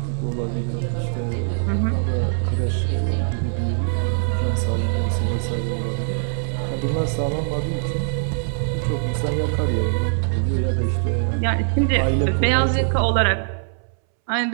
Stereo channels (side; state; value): left; silent; 64 dB below the other